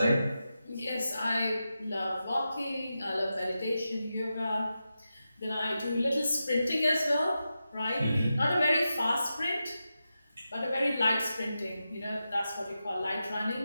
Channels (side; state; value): both; inverted; correlation -0.90